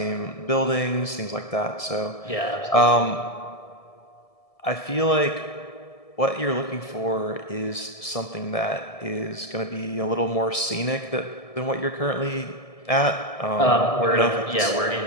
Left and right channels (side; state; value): right; late; 1.7 ms